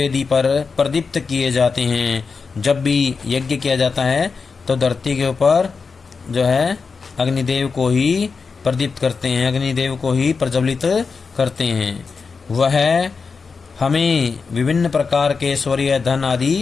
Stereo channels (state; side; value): quieter; right; 5.0 dB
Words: पर प्रदीप्त किए जाते हैं। जब भी यज्ञ किया जाता है तो धरती के ऊपर जो है अग्निदेव को ही प्रदीप्त करते हैं, अग्निदेव को ही प्रज्वलित करते हैं। वह हमें विभिन्न प्रकार के ऐश्वर्य धन आदि